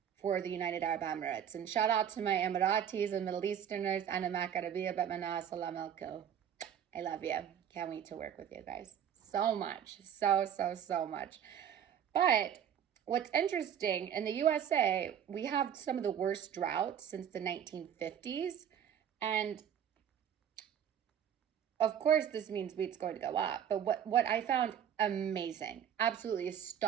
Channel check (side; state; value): left; quieter; 9.2 dB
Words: for the United Arab Emirates. And shout out to my Emiratis and Middle Easterners. Ana makarabia batmana salam alaikum. I love you. Can't wait to work with you guys so much. So much. But what's interesting, in the USA, we have some of the worst droughts since the 1950s. And of course, this means wheat's going to go up. But what I found amazing, absolutely